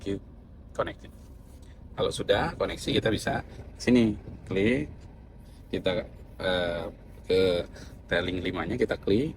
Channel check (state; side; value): identical; both; correlation 1.00